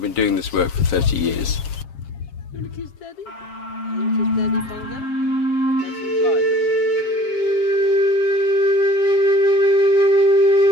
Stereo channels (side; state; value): right; late; 7.4 ms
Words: been doing this work for 30 years. You want to kiss Daddy? You want to kiss Daddy, Bongo? That's some flies.